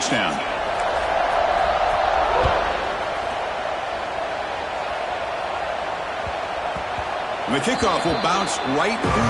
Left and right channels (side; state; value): both; identical; correlation 1.00